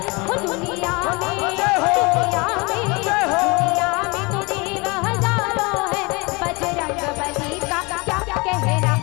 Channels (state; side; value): quieter; right; 27.1 dB